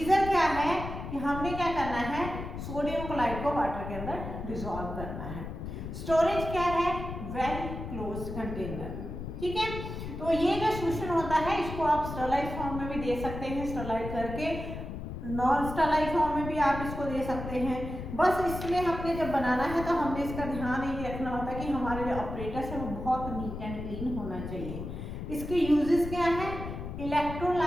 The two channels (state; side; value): noise; left; rumble, 7 dB below the sound